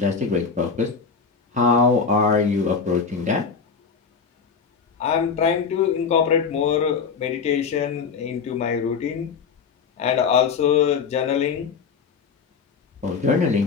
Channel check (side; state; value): right; quieter; 5.7 dB